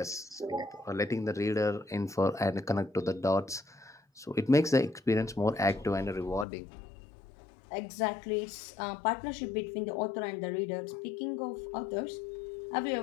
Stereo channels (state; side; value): drops out; right; at 6.5 s